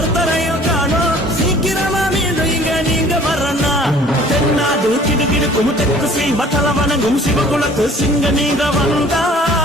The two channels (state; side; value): normal; both; correlation 0.52